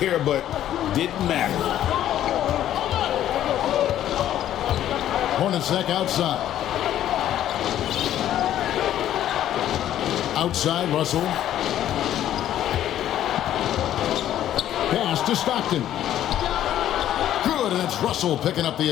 but didn't matter. Hornacek outside. Outside, Russell. Pass to Stockton. Good, and it's Russell picking up the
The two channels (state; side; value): quieter; right; 11.8 dB